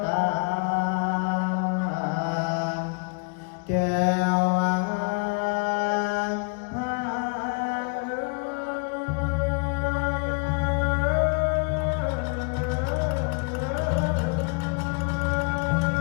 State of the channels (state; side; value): quieter; right; 35.0 dB